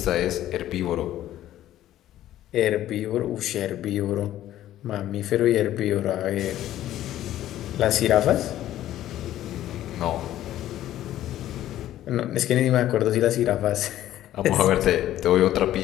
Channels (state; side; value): quieter; right; 13.1 dB